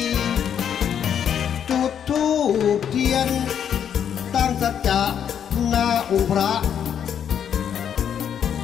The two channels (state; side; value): quieter; right; 8.6 dB